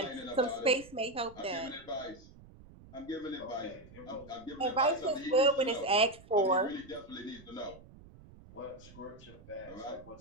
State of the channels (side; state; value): right; noise; rumble, 21 dB below the sound